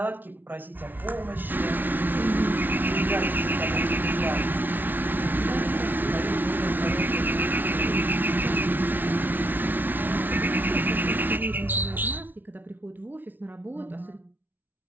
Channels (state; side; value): late; left; 0.088 ms